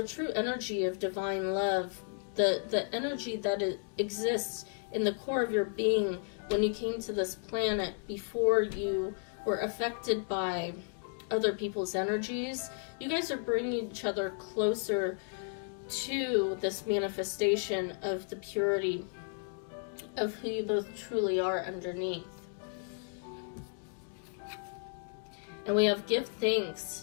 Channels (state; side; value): silent; right; 55 dB below the other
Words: true energy of divine love, the energy that exists in the core of your being when you came to this planet before you were affected by other people's energies. You guys are bringing each other closer to this manifestation of the purity of who you both truly are underneath. And we have give